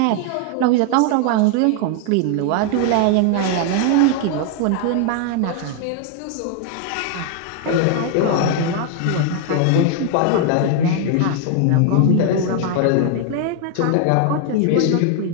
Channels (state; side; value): different; both; correlation 0.00